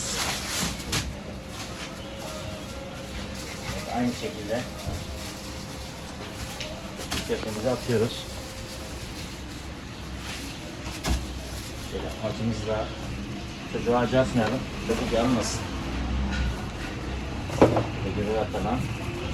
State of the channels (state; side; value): identical; both; correlation 1.00